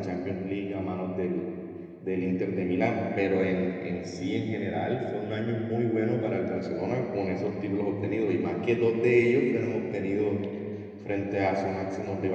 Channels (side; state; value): both; identical; correlation 1.00